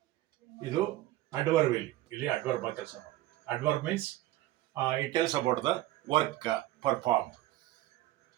ಇದು ಅಡ್ವರ್ಬ್. ಇಲ್ಲಿ ಅಡ್ವರ್ಬ್ ಆಗಿ ಕೆಲಸ ಮಾಡಿ. Adverb means it tells about the work perform.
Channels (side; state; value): left; quieter; 15.9 dB